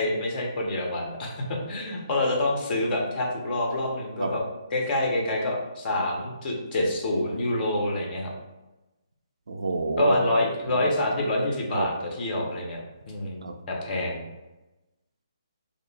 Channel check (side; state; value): both; inverted; correlation -0.70